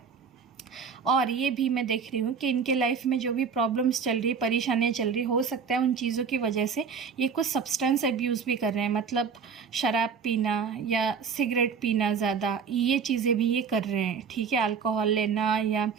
और ये भी मैं देख रही हूँ कि इनके लाइफ में जो भी प्रॉब्लम्स चल रही है, परेशानियाँ चल रही, हो सकता है उन चीज़ों की वजह से ये कुछ सब्सटेंस अब्यूज़ भी कर रहे हैं। मतलब शराब पीना या सिगरेट पीना ज़्यादा, ये चीज़ें भी ये कर रहे हैं, ठीक है। अल्कोहल लेना या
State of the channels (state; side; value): quieter; left; 6.2 dB